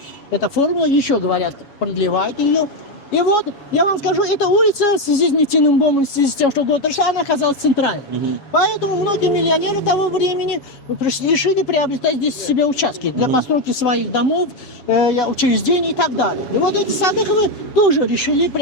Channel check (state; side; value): late; right; 7.2 ms